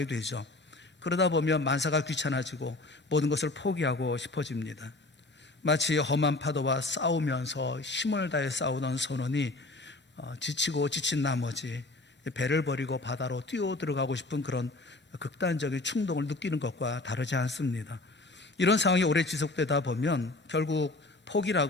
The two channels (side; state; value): right; quieter; 3.0 dB